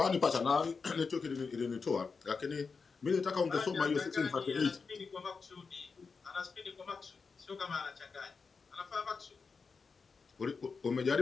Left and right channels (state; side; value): quieter; right; 5.0 dB